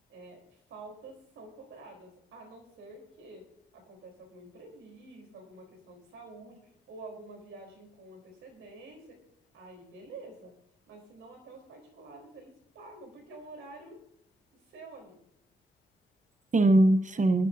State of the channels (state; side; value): normal; both; correlation 0.84